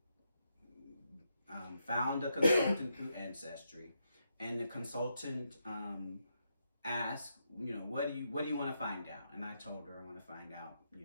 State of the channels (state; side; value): inverted; both; correlation -0.82